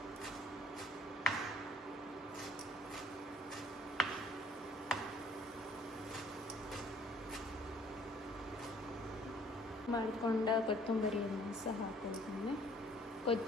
ಮಾಡಿಕೊಂಡ ಕೊತ್ತಂಬರಿಯನ್ನು ಸಹ ಹಾಕೊಳ್ತೀನಿ,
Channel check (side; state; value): both; normal; correlation 0.57